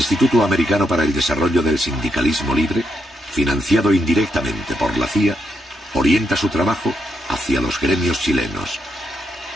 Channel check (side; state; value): both; normal; correlation 0.80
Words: Americano para el Desarrollo del Sindicalismo Libre, financiado indirectamente por la CIA, orienta su trabajo hacia los gremios chilenos.